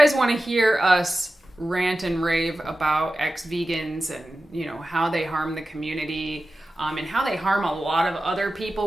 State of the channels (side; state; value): both; normal; correlation 0.94